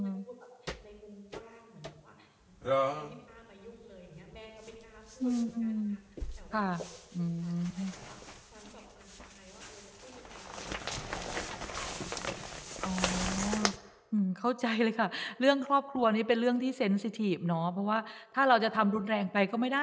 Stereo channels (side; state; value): both; identical; correlation 1.00